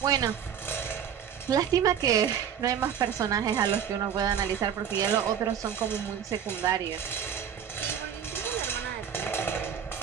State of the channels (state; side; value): quieter; left; 8.5 dB